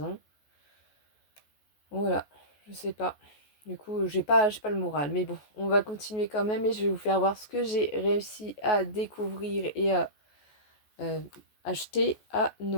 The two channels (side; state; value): right; late; 14 ms